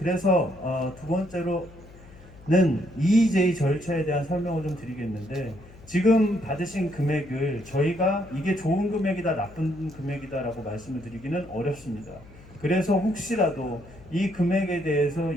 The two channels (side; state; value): left; noise; hum, 21 dB below the sound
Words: 두 번째로는 EEJ 절차에 대한 설명을 좀 드리겠는데 지금 받으신 금액을 저희가 이게 좋은 금액이다 나쁜 금액이다라고 말씀을 드리기는 어렵습니다. 그래서 혹시라도 이 금액에 대해서